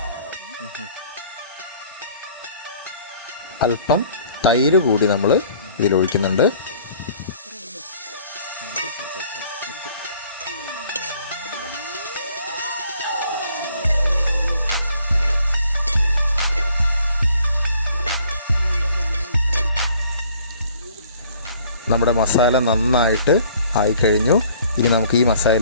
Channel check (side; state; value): both; inverted; correlation -0.57